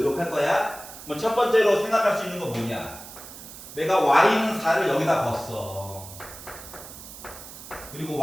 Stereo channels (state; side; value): noise; right; hiss, 15 dB below the sound